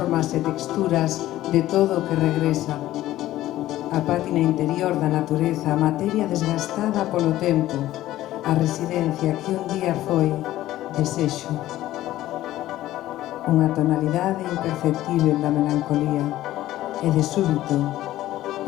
e texturas de todo o que regresa. A pátina interior da natureza, a materia desgastada polo tempo, a residencia que un día foi desexo. Unha tonalidade imperceptível da melancolía e de súbito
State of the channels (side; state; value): right; quieter; 14.7 dB